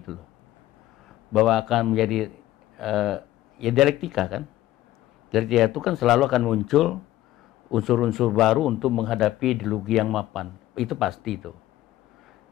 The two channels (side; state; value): right; quieter; 14.8 dB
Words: loh. Bahwa akan menjadi ya dialektika kan. Dialektika itu kan selalu akan muncul unsur-unsur baru untuk menghadapi ideologi yang mapan. Itu pasti itu.